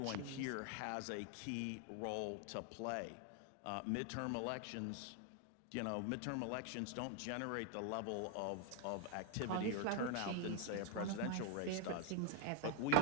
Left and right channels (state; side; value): different; both; correlation 0.00